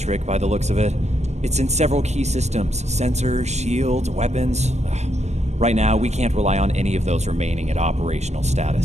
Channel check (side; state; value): left; late; 0.32 ms